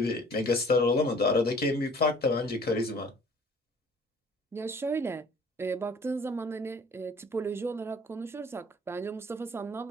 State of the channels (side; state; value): both; normal; correlation 0.53